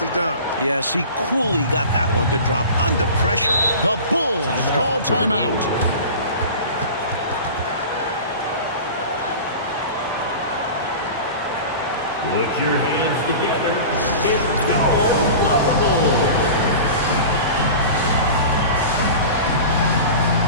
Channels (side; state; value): both; inverted; correlation -0.35